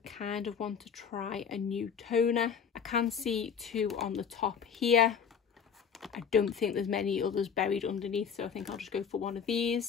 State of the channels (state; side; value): quieter; right; 7.1 dB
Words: kind of want to try a new toner. I can see 2 on the top here. I don't think there's many others buried underneath, so I think I'll just go for one of